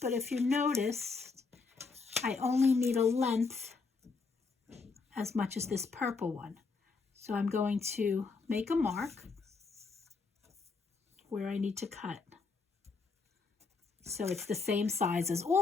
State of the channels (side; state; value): right; quieter; 4.5 dB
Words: but if you notice, I only need a length as much as this purple one. So I'm going to make a mark where I need to cut. So it's the same size as